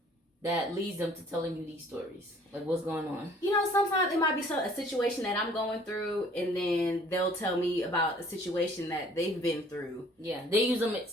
that leads them to telling you these stories? Like, what's going on? You know, sometimes it might be a situation that I'm going through, and then they'll tell me about a situation that they've been through. Yeah, they use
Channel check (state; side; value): normal; both; correlation 0.55